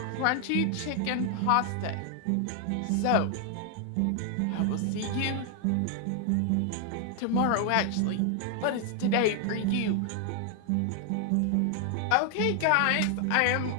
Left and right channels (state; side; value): different; both; correlation 0.00